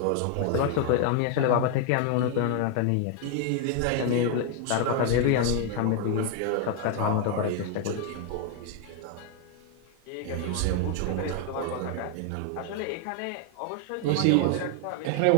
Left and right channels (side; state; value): both; different; correlation 0.00